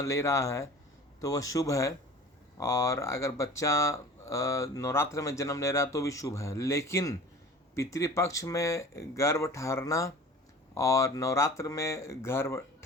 रहा है तो वह शुभ है, और अगर बच्चा नवरात्र में जन्म ले रहा है तो भी शुभ है। लेकिन पितृपक्ष में गर्भ ठहरना और नवरात्र में गर्भ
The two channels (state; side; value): normal; both; correlation 0.41